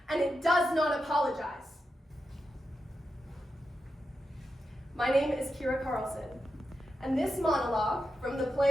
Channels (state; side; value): normal; both; correlation 0.88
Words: and it does not apologize. My name is Kira Carlson, and this monologue from the